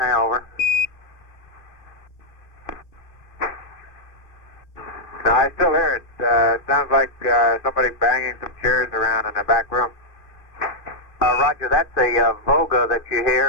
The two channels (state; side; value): late; right; 2.5 ms